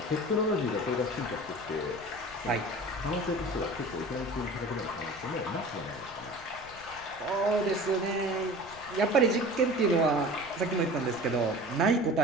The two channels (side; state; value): left; noise; rumble, 21 dB below the sound